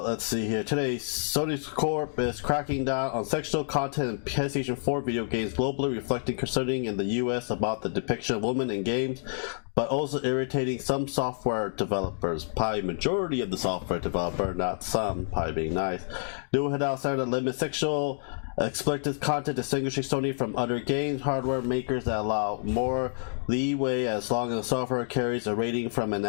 see here. Today, Sony Corp is cracking down on sexual content in PlayStation 4 video games globally, reflecting concerning in the US about the depiction of women in games, but also irritating some software developers. Probably majority of the software developer, not some, probably being nice. New head outside that limit sexual explicit content, distinguishing Sony from other games hardware makers that allow more leeway as long as the software carries a rating from a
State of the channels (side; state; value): right; silent; digital silence